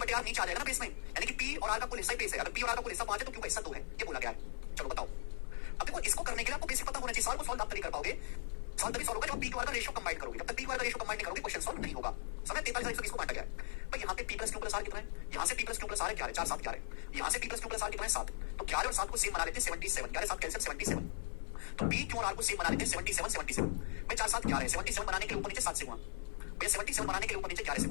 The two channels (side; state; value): right; silent; 52 dB below the other